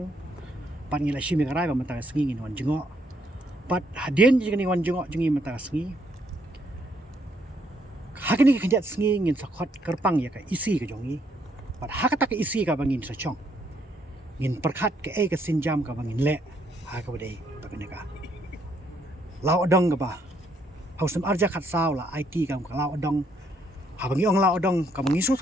pan ngila shimi karai ba mata sngi ngin wan jongo pat hadin jing ni wan jongo jing mata sngi hakini ki kanjat sngi ngin sakot kerpang ya ka isi ka jongi pat hakata ka isi ka bangin sa chong ngin perkhat ke ka sinjam ka bangin le ha ka badai bagane ka law adong ka ba hausam arja khat saw la IT ka law adong ha bangi ong law adong ka bangi su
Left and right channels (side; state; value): both; normal; correlation 0.71